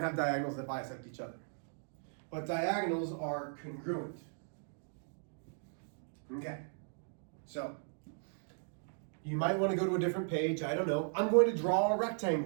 have diagonals that bisect each other. But diagonals are congruent. Okay, so you might want to go to a different page. I don't know. I'm going to draw a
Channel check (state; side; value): silent; left; digital silence